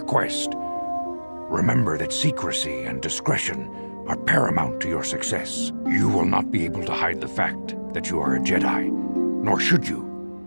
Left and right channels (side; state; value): both; inverted; correlation -1.00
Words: quest. Remember that secrecy and discretion are paramount to your success. You will not be able to hide the fact that you are a Jedi, nor should you.